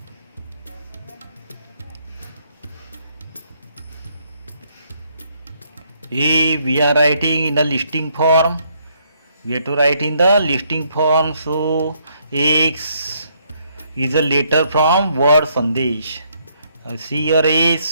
A we are writing in the listing form. We have to write in the listing form. So X is a letter from word Sandesh. See your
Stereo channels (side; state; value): both; inverted; correlation -0.71